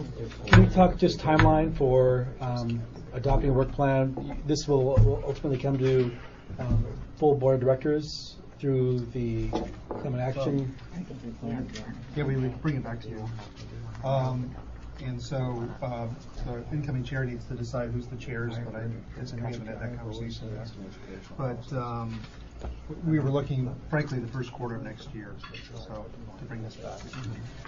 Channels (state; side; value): identical; both; correlation 1.00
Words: can we talk just timeline for adopting a work plan? This will ultimately come to full board of directors through the climate action. Yeah, we would bring it back to you. And so the incoming chair needs to decide who's the chairs, but we haven't had that conversation yet. But we were looking, frankly, the first quarter of next year, so to bring this back.